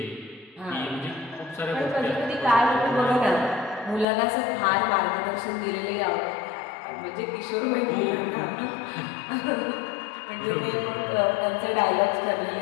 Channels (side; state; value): right; drops out; at 4.0 s